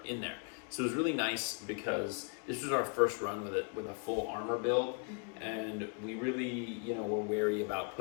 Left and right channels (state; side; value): quieter; right; 36.4 dB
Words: in there. So it was really nice, because this was our first run with it, with a full armor build, and we really, were wary about